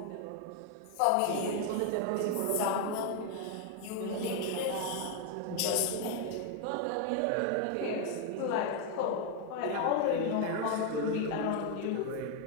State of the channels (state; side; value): different; both; correlation 0.01